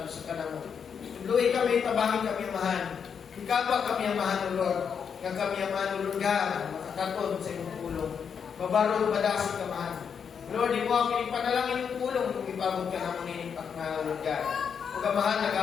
ka na mo. Tuluy kami, tabahin kami ang mahal. Ikapa kami ang mahal Lord. Nga kami ang mahal Lord God, makakatod sa iyong pulong. Mabarog, madasig ka mahal. Lord, di mo ang pinipanalangin yung pulong kung ipabot ka na mo ninipak na Lord God. Huwag ka mahal,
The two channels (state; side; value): quieter; right; 6.9 dB